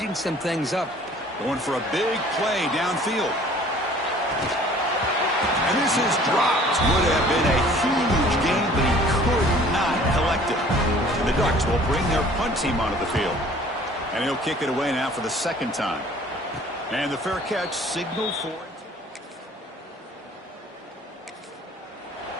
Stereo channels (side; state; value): both; normal; correlation 0.52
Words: some things up. Going for a big play downfield. And this is dropped. Would have been a huge gain, but he could not collect it. And the Ducks will bring their punt team onto the field. And he'll kick it away now for the second time. And the fair catch signaled for it.